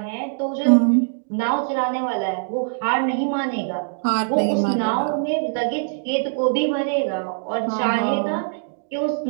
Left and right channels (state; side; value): silent; left; digital silence